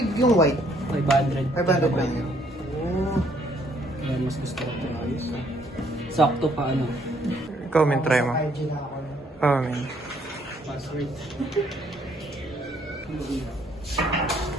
yung white. 500. 500 lang yun. Oh. Kaya mas gusto ko ito. Ayos. Sakto pa ano. Ikaw, men, try mo. Oh, men. Password.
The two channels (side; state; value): both; normal; correlation 0.66